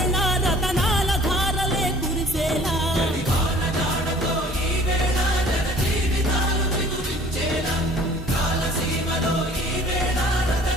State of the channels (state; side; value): normal; both; correlation 0.52